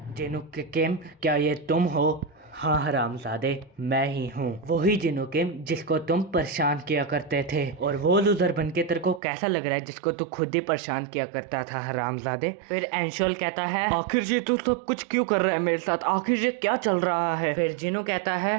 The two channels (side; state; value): left; drops out; at 9.2 s